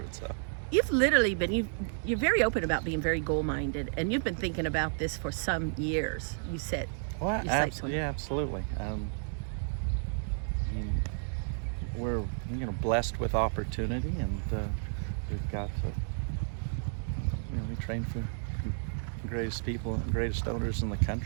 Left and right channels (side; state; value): left; silent; digital silence